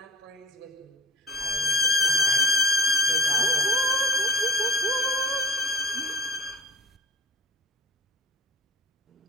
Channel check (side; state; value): both; normal; correlation 0.40